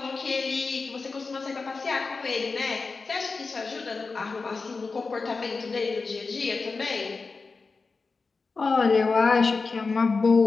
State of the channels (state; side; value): quieter; right; 4.3 dB